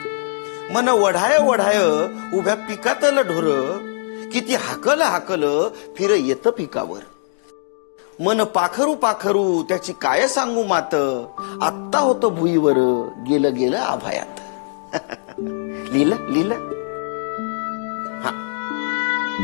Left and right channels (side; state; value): right; silent; digital silence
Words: मन वढाय वढाय उभ्या पिकातलं ढोर, किती हाकल हाकल फिर येतं पिकावर. मन पाखरू पाखरू त्याची काय सांगू मात, आत्ता होतं भुईवर गेलं गेलं आभायात. लिहिलं लिहिलं. हा.